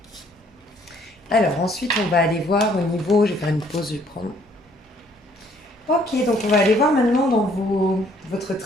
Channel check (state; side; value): normal; both; correlation 0.63